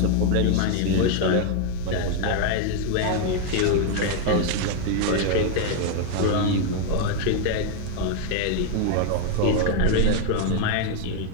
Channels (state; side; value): different; both; correlation 0.00